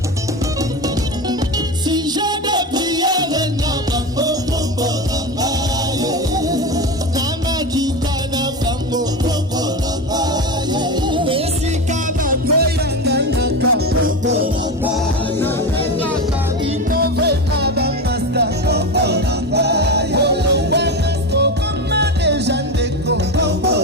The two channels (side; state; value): both; normal; correlation 0.20